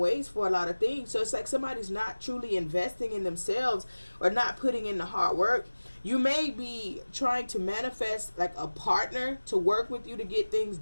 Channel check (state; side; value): inverted; both; correlation -1.00